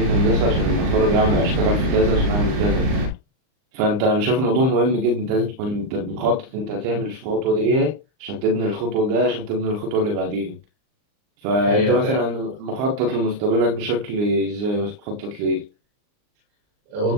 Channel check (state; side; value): late; left; 39 ms